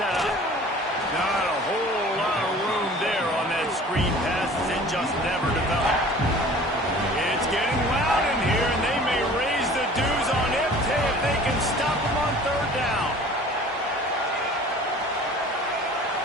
up. Not a whole lot of room there on that screen pass as it just never developed. It's getting loud in here, and they may raise the dues on Ifte if they can stop them on third down.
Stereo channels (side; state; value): both; normal; correlation 0.46